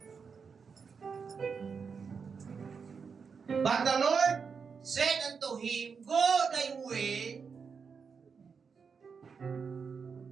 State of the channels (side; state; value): left; quieter; 5.8 dB